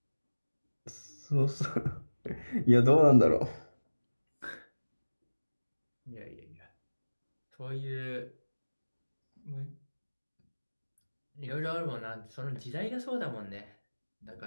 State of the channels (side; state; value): both; inverted; correlation -1.00